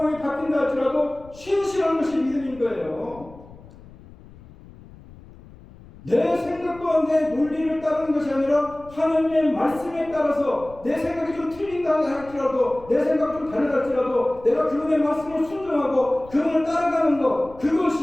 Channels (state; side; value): noise; left; rumble, 21 dB below the sound